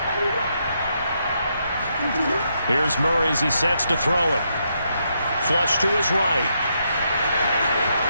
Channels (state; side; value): inverted; both; correlation -0.79